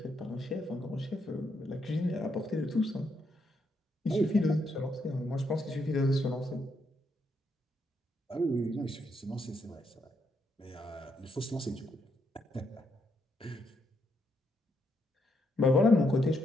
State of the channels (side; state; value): both; normal; correlation 0.77